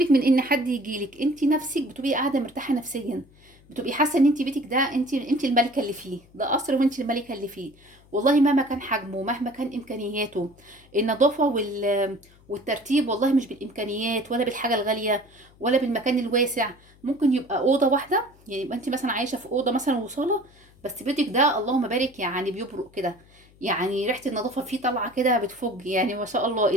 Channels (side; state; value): left; noise; hum, 28 dB below the sound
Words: من ان حد يجيلك، انت نفسك بتبقي قاعده مرتاحه نفسيا، بتبقي حاسه ان انت بيتك ده انت الملكه اللي فيه، ده قصر وانت الملكه اللي فيه. والله مهما كان حجمه، مهما كان امكانياته، النظافه والترتيب والله مش بالامكانيات ولا بالحاجه الغاليه ولا بالمكان الواسع. ممكن يبقى اوضه واحده، يعني يبقى انت مثلا عايشه في اوضه مثلا وصاله، بس بيتك ده اللهم بارك يعني بيبرق كده، يعني ريحه النظافه فيه طالعه كده بتفج، يعني ما شاء الله،